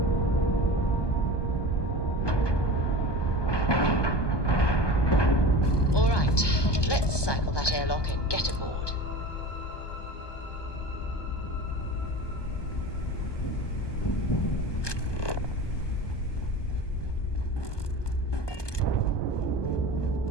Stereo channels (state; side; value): late; right; 1.2 ms